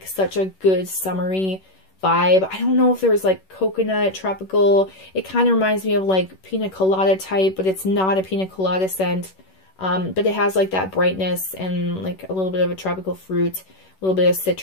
such a good summery vibe. I don't know if there's like coconut, tropical. It kind of reminds me of like pina colada type, but it's not a pina colada scent. But it has like that brightness and like a little bit of a tropical fruit, a little bit of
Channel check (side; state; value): right; late; 11 ms